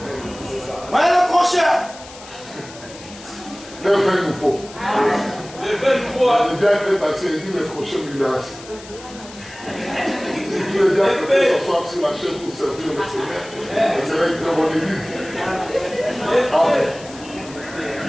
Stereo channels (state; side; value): noise; left; hiss, 18 dB below the sound